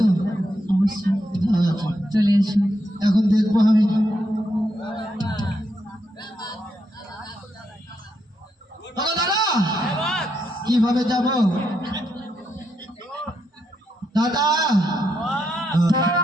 চলে এসো। এখন দেখবো আমি কিভাবে যাব। দাদা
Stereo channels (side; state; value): both; normal; correlation 0.81